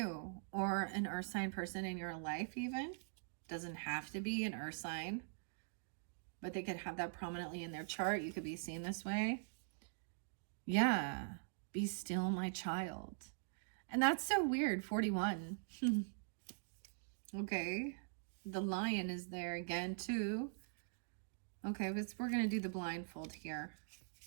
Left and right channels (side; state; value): left; silent; digital silence